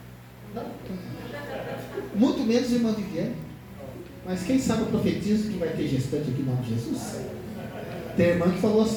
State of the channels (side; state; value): both; identical; correlation 1.00